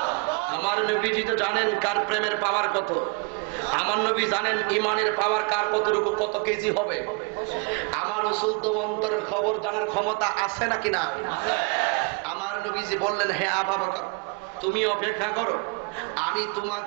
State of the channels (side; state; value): left; quieter; 32.2 dB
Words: আমার নবীজি তো জানেন কার প্রেমের পাওয়ার কত। আমার নবী জানেন ইমানের পাওয়ার কার কতটুকু, কত কেজি হবে। আমার রাসূল তো অন্তরের খবর জানার ক্ষমতা আছে নাকি না? আমার নবীজি বললেন, হে আবু বকর, তুমি অপেক্ষা করো, আমি